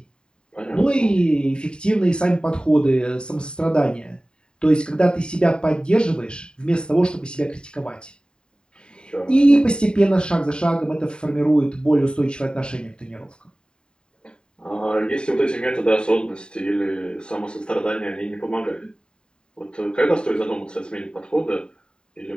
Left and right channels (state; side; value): late; right; 0.049 ms